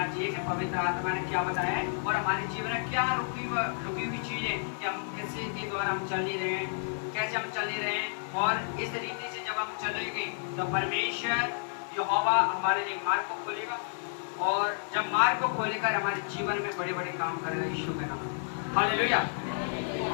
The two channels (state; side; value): silent; right; 57 dB below the other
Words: चाहिए कि पवित्र आत्मा ने क्या बताया है और हमारे जीवन में क्या रुकी हुई चीजें कि हम कैसे के द्वारा हम चल ही रहे हैं, कैसे हम चल ही रहे हैं। और इस रीति से जब हम चलेंगे तो परमेश्वर यहोवा हमारे लिए मार्ग को खोलेगा, और जब मार्ग को खोलेकर हमारे जीवन में बड़े बड़े काम करेगा यीशु के नाम। हालेलुया।